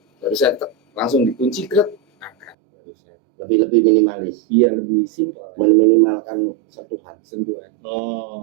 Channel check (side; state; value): left; drops out; at 2.6 s